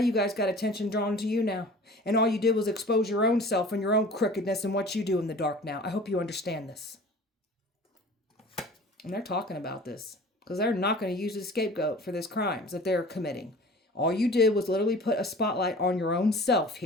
guys got attention drawn to you now. And all you did was expose your own self and your own crookedness and what you do in the dark now. I hope you understand this. And they're talking about this because they're not going to use the scapegoat for this crimes that they're committing. All you did was literally put a spotlight on your own self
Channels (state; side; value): normal; both; correlation 0.43